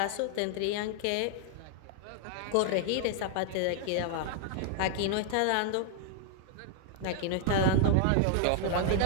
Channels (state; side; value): different; both; correlation 0.00